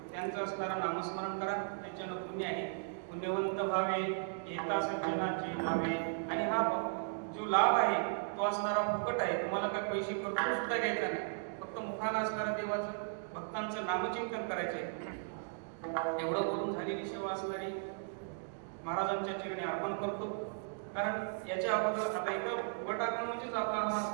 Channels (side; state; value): left; silent; digital silence